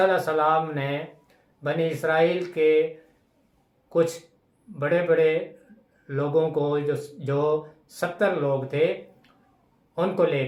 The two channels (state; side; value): identical; both; correlation 1.00